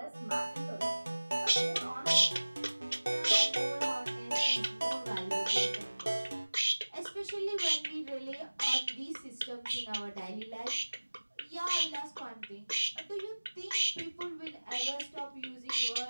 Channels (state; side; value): inverted; both; correlation -1.00